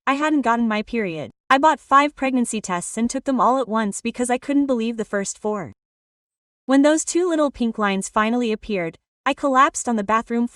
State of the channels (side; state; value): both; identical; correlation 1.00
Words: I hadn't gotten my period. I bought 5 pregnancy tests and took them all at once because I couldn't believe the first 4. When those 2 little pink lines finally appeared, I collapsed on the bathroom